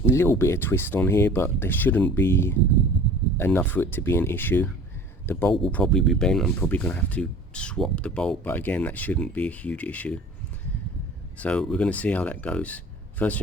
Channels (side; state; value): both; normal; correlation 0.44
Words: little bit of twist on here, but there shouldn't be enough for it to be an issue. The bolt will probably be bent. I'm probably going to have to swap the bolt, but again, that shouldn't be a huge issue. So we're going to see how that goes. First